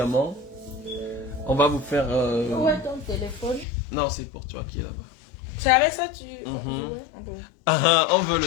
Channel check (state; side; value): drops out; right; at 3.7 s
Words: on va vous faire... Où est ton téléphone? Non, c'est pour toi qui est là-bas. C'est avec ça tu... Ah, on veut